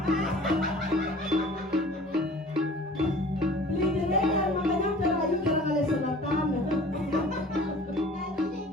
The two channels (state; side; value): normal; both; correlation 0.46